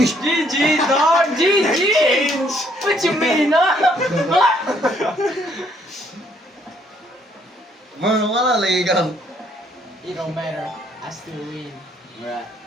GG, dog! GG! Change. What you mean, huh? Wala lagi ka. It don't matter. I still win. Right.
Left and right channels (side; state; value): both; normal; correlation 0.67